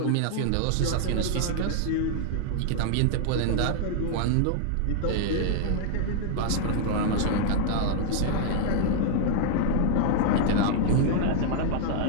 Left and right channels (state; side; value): different; both; correlation 0.00